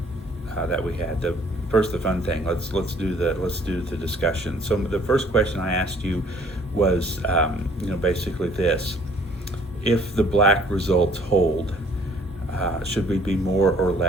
we had. First, the fun thing. Let's do the discussion. So the first question I asked you was, basically this: if the black results hold, should we be more or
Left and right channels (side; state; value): both; normal; correlation 0.58